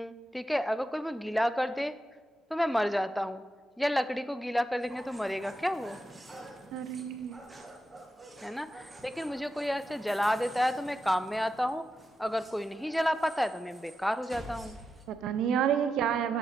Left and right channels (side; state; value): both; normal; correlation 0.87